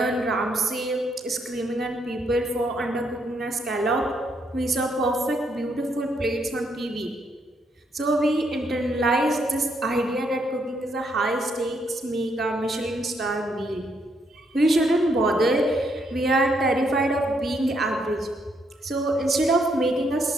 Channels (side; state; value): both; normal; correlation 0.74